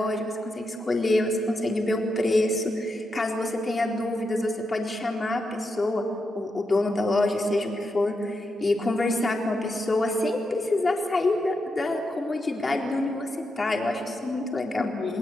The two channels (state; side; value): normal; both; correlation 0.85